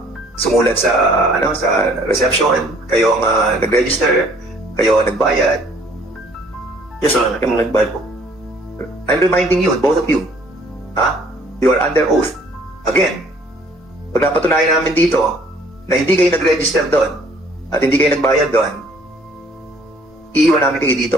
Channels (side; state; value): both; normal; correlation 0.58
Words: sumulat sa reception, kayo ang nag-register, kayo ang nagbayad. Yes, Your Honor. Kayo ang nagbayad po. I'm reminding you, both of you, you are under oath. Again, pag napatunayan namin dito na hindi kayo nag-register doon at hindi kayo nagbayad doon, iiwan namin kayo